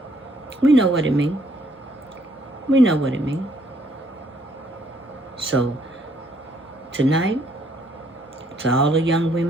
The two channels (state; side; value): normal; both; correlation 0.67